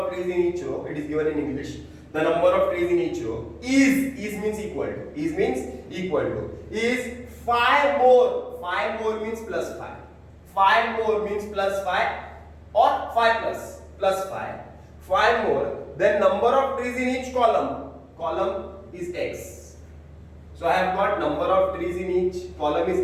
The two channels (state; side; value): identical; both; correlation 1.00